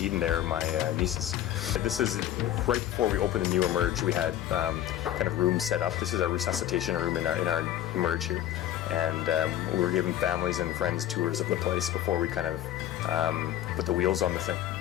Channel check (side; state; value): right; quieter; 12.2 dB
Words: there, my nieces. This is right before we opened the new Emerge. We had kind of rooms set up. This is our resuscitation room in our Emerge here. And we were giving families and friends tours of the place before we kind of put the wheels on the thing.